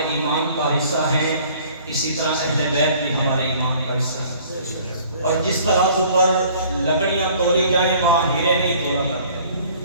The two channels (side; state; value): both; inverted; correlation -0.53